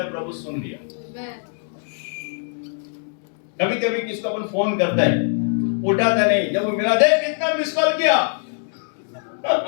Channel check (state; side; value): silent; right; digital silence